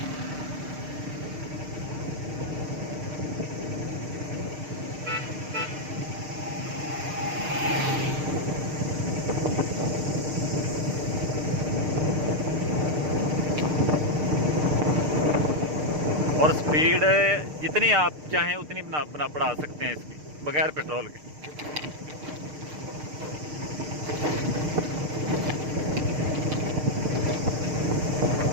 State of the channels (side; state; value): left; late; 6.6 ms